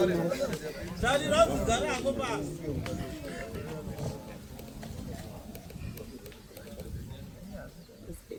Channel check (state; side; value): identical; both; correlation 1.00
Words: Sali rangu garako basi.